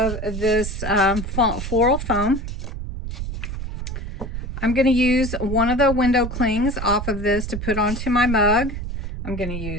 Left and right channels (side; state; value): right; noise; rumble, 6 dB below the sound